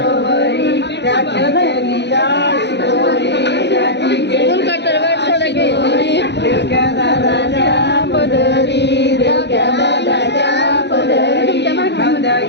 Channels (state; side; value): late; right; 0.50 ms